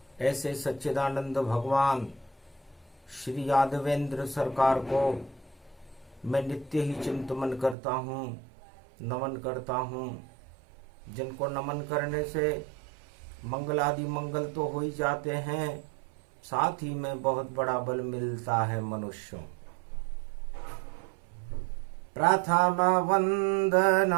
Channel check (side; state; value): left; drops out; at 7.8 s